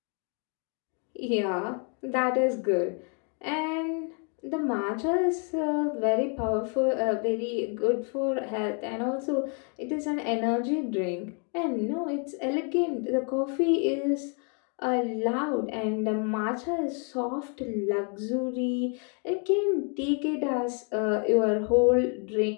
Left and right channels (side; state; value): right; quieter; 39.7 dB